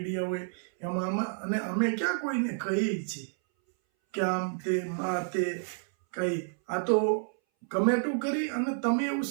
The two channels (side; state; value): left; silent; 58 dB below the other